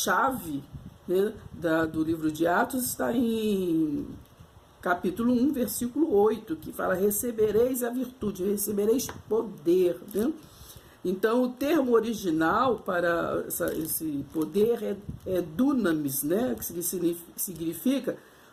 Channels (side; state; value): both; identical; correlation 1.00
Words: né, do livro de Atos está em capítulo 1, versículo 8, que fala: recebereis a virtude, recebereis poder, né? Então, o termo original para esse poder é dunamis, né? Que significa